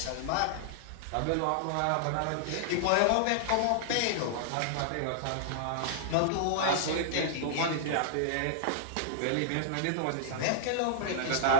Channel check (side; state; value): both; different; correlation -0.01